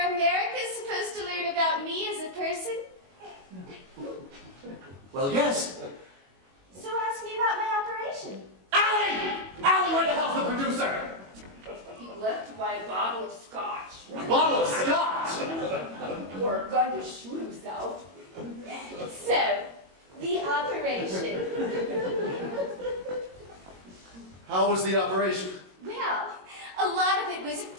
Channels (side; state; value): left; late; 21 ms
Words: America's supposed to learn about me as a person? Well, yes. So ask me about my operation. Allie! Allie, where the hell's the producer? He left to buy a bottle of scotch. A bottle of scotch! Or a gun to shoot himself. So, the operation. How was the operation? Well, a lot of it was